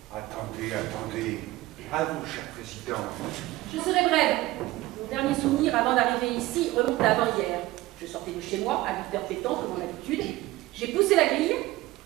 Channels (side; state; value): left; quieter; 18.1 dB